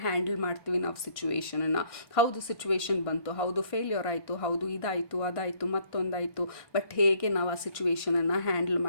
ಹ್ಯಾಂಡಲ್ ಮಾಡ್ತೀವಿ ನಾವು ಸಿಚುವೇಶನನ್ನು. ಹೌದು ಸಿಚುವೇಶನ್ ಬಂತು, ಹೌದು ಫೇಲ್ಯೂರ್ ಆಯಿತು, ಹೌದು ಇದಾಯಿತು ಅದಾಯಿತು ಮತ್ತೊಂದಾಯಿತು, ಬಟ್ ಹೇಗೆ ನಾವು ಆ ಸಿಚುವೇಶನನ್ನು ಹ್ಯಾಂಡಲ್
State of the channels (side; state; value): right; late; 1.6 ms